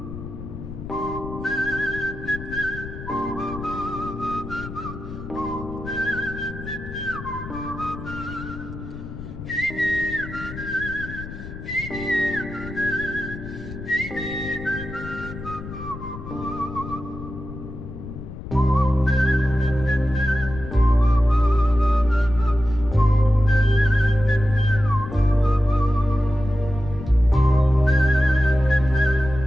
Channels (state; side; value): noise; left; rumble, 11 dB below the sound